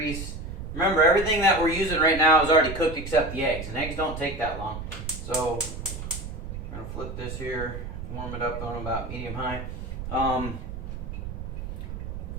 Remember, everything that we're using right now is already cooked except the eggs, and eggs don't take that long. So I'm going to flip this here, warm it up on about medium-high.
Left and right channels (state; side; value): noise; right; rumble, 7 dB below the sound